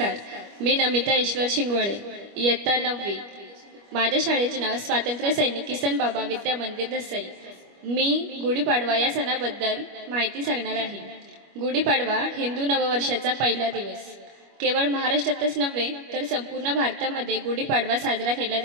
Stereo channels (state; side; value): late; left; 25 ms